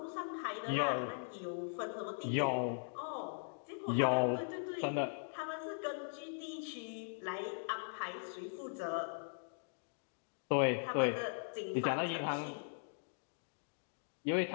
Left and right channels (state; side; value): silent; right; digital silence